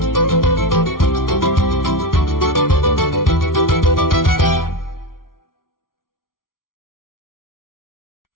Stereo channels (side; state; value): right; late; 0.91 ms